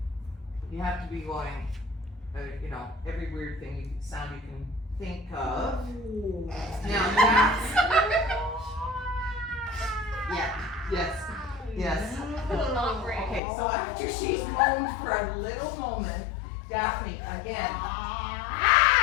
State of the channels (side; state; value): right; drops out; at 13.4 s